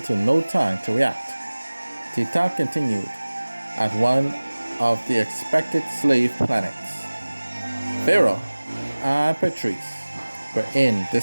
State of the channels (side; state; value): both; inverted; correlation -1.00